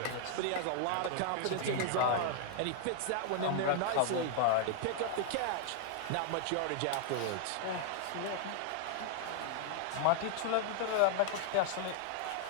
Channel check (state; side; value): different; both; correlation 0.00